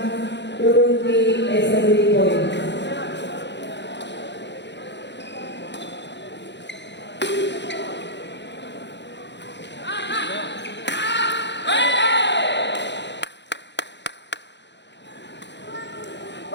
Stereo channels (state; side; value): late; right; 0.51 ms